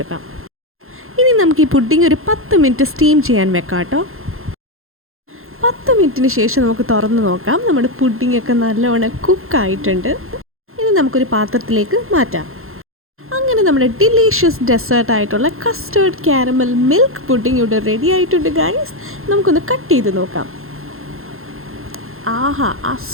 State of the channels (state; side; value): late; left; 0.61 ms